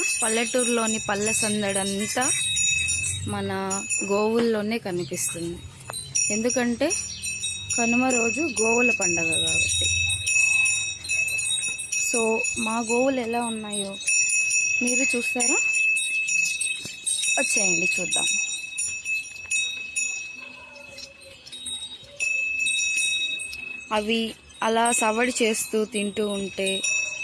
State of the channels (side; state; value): both; identical; correlation 1.00